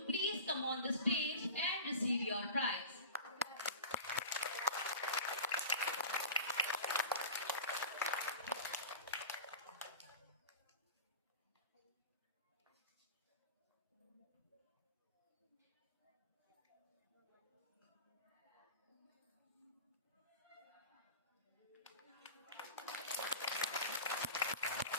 please come on the stage and receive your prize.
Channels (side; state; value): both; inverted; correlation -0.33